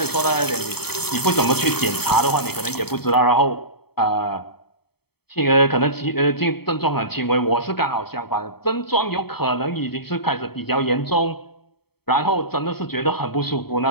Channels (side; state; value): right; late; 0.96 ms